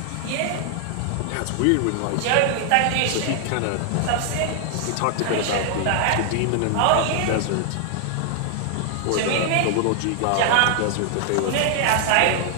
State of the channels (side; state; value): both; different; correlation 0.00